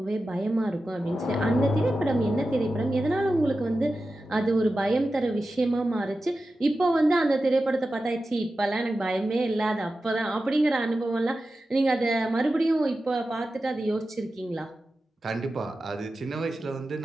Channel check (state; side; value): normal; both; correlation 0.93